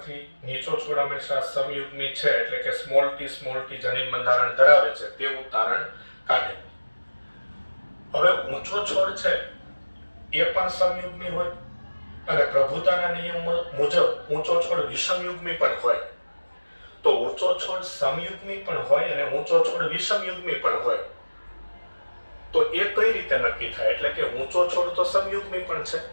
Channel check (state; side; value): inverted; both; correlation -1.00